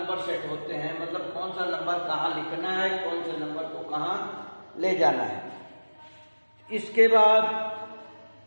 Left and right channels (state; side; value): inverted; both; correlation -1.00